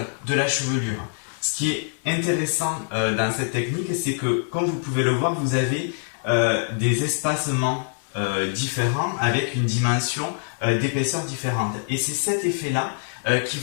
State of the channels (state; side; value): silent; right; digital silence